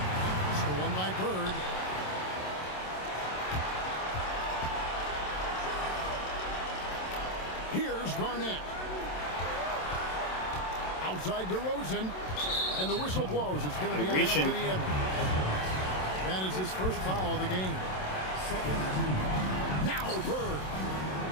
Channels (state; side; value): late; right; 27 ms